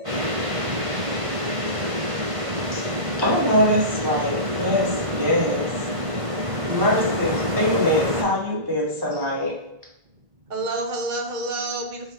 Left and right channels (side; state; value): left; late; 1.5 ms